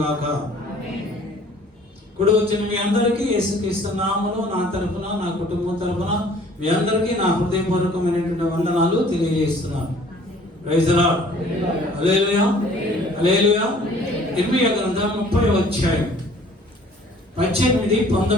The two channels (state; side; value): normal; both; correlation 0.54